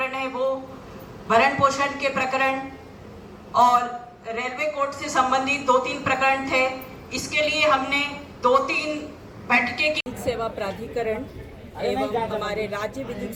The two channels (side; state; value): both; identical; correlation 1.00